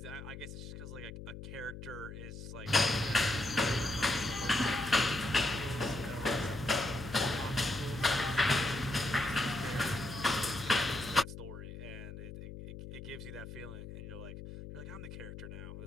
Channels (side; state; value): left; noise; hum, 11 dB below the sound